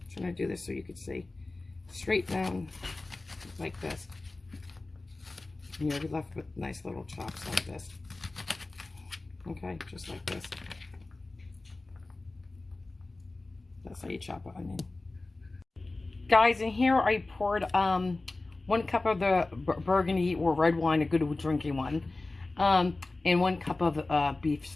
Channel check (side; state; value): right; quieter; 3.2 dB